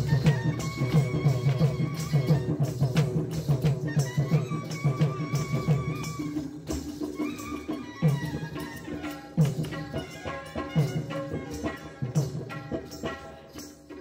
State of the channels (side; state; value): both; identical; correlation 1.00